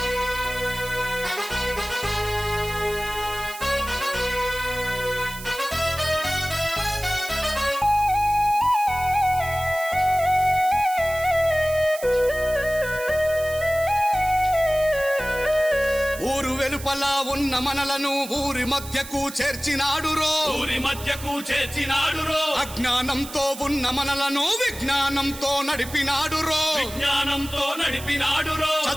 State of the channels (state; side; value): noise; right; hiss, 13 dB below the sound